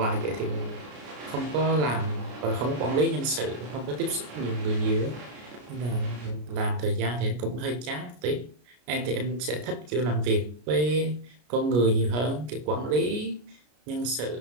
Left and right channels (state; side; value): late; left; 33 ms